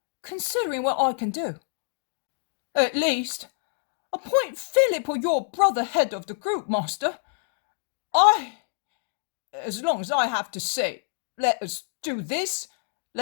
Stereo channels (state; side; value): silent; right; digital silence